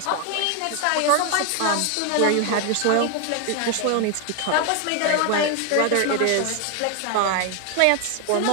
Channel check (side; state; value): both; different; correlation 0.01